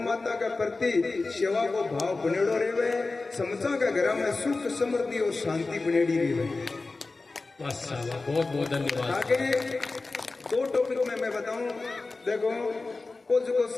के प्रति सेवा को भाव बनेड़ो रहे, समझा के घर में सुख समृद्धि और शांति बनेड़ी रहे। बहुत बहुत धन्यवाद। आगे 2 टॉपिक में मैं बताऊं, देखो वो जो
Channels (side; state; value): right; quieter; 3.6 dB